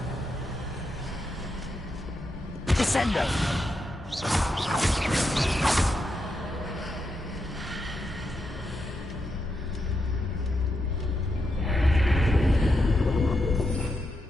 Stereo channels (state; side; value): normal; both; correlation 0.84